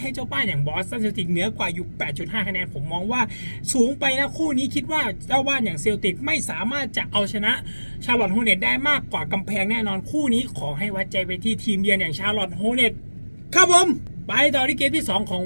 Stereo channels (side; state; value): both; inverted; correlation -1.00